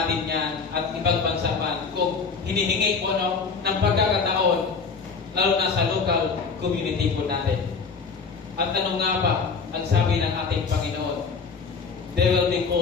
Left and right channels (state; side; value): quieter; right; 5.1 dB